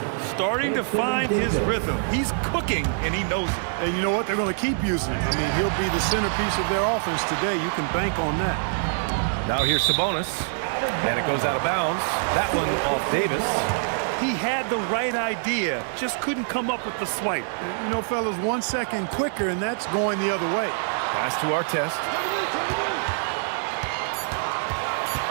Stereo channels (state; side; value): silent; left; digital silence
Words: Starting to find his rhythm. He's cooking, and he knows it. And you know what? They're going to keep using it. I mean, he'll be the centerpiece of their offense today. You can bank on that. Now here's Sabonis. And it goes out of bounds. That one off Davis. He had the right idea, just couldn't come up with the swipe. And, you know, fellas, 1 second quicker, and that's going the other way. Pass to Artest.